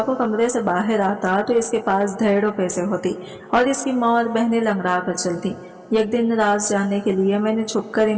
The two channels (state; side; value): identical; both; correlation 1.00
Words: को कमरे से बाहर आता तो इसके पास ढेरों पैसे होती और इसकी माँ और बहनें लंगड़ा कर चलती। एक दिन राज जानने के लिए मैंने छुपकर